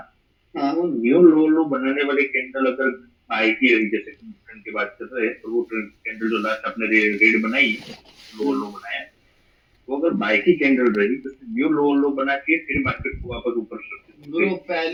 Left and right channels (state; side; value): identical; both; correlation 1.00